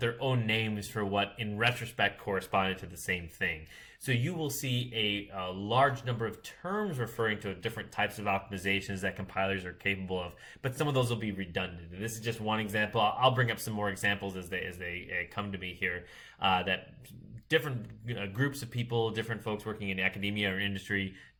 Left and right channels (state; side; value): identical; both; correlation 1.00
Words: own names for what, in retrospect, corresponded to the same thing. So you will see a large number of terms referring to different types of optimizations that compilers are capable of, but some of those will be redundant. And this is just one example. I'll bring up some more examples as they come to me here. That different groups of people, different folks working in academia or industry